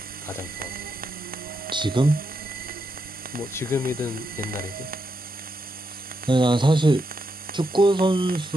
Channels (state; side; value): normal; both; correlation 0.82